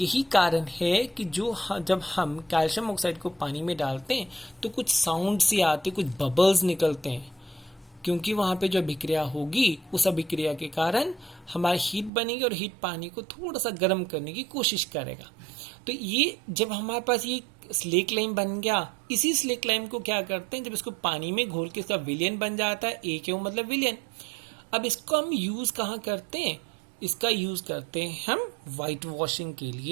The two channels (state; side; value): drops out; left; at 12.1 s